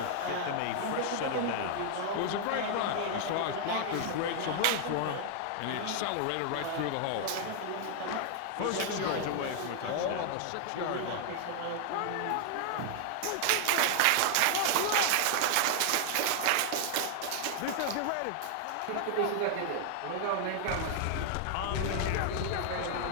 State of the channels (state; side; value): different; both; correlation 0.00